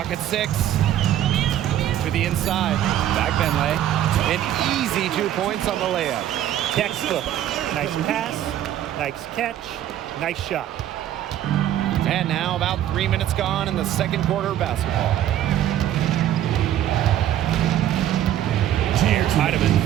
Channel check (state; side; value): quieter; left; 11.7 dB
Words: at 6. To the inside. Back Benley. An easy 2 points on the layup. Textbook. Nice pass, nice catch, nice shot. And now about 3 minutes gone in the second quarter of basketball. Here's